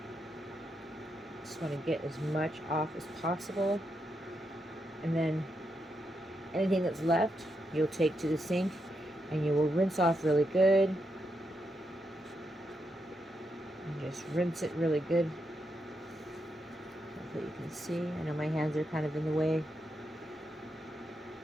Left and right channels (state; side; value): normal; both; correlation 0.83